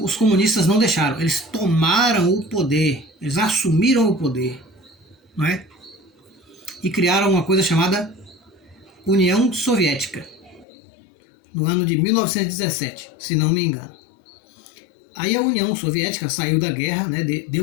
comunistas não deixaram. Eles tomaram o poder, eles assumiram o poder, não é? E criaram uma coisa chamada União Soviética, no ano de 1917, se não me engano. Aí a União Soviética saiu da guerra, né?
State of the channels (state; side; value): drops out; right; at 10.7 s